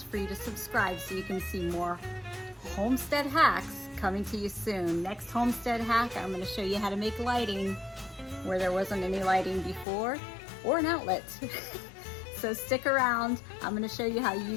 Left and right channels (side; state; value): right; drops out; at 9.9 s